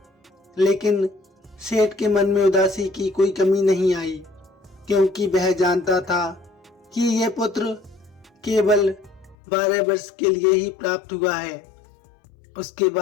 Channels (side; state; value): right; drops out; at 9.3 s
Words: लेकिन सेठ के मन में उदासी की कोई कमी नहीं आई, क्योंकि वह जानता था कि यह पुत्र केवल 12 वर्ष के लिए ही प्राप्त हुआ है। उसके